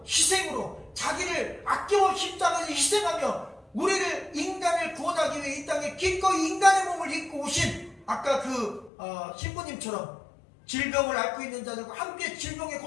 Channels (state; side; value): drops out; right; at 8.9 s